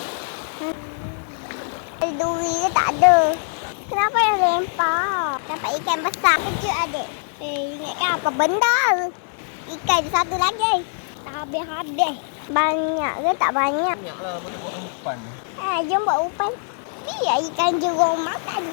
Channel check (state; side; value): silent; right; 62 dB below the other